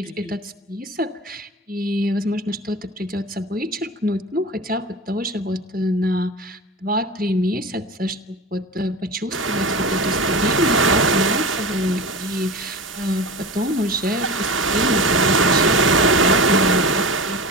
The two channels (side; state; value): both; normal; correlation 0.30